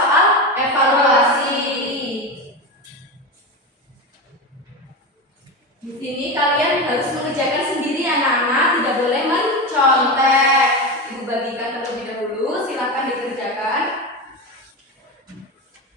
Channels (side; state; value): both; normal; correlation 0.20